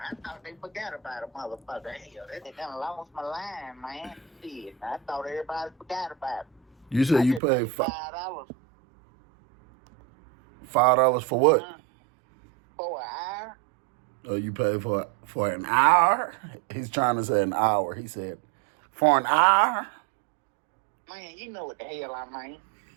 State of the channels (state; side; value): drops out; left; at 7.4 s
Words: I thought they forgot about a motherfucker. Hell, they done lost my line, man. Shit, I thought everybody forgot about it. You said you paid $5. $5 for what? For an hour. Oh, you paid for an hour? He's trying to say an hour. He said, for an hour? Man, you know what the hell I mean.